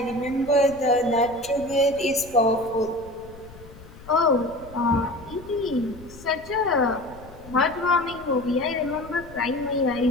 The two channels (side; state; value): left; noise; rumble, 19 dB below the sound